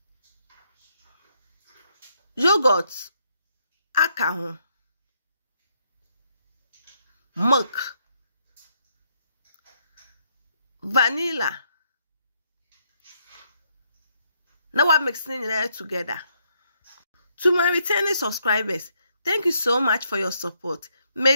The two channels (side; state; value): both; inverted; correlation -0.74